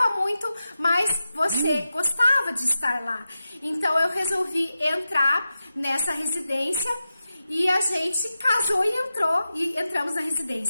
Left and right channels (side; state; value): both; inverted; correlation -0.91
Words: muito, mas você gostava de estar lá. Então eu resolvi entrar nessa residência e a gente casou e entramos na